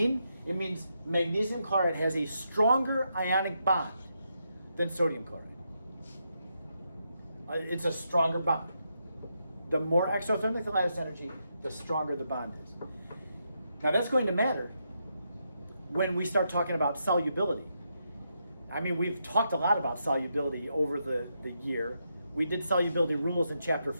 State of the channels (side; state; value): both; inverted; correlation -0.82